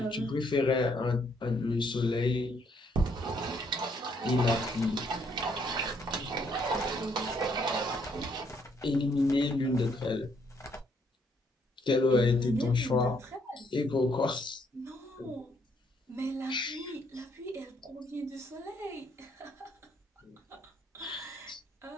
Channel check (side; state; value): both; normal; correlation 0.70